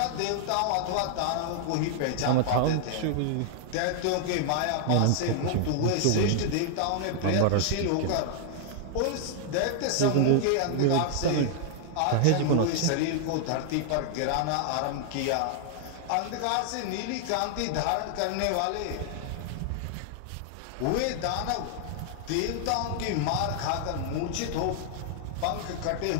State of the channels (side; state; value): both; different; correlation 0.00